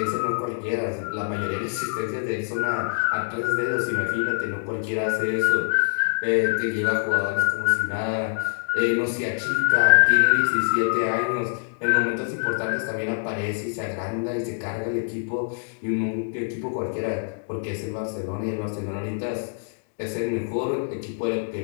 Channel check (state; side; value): silent; right; digital silence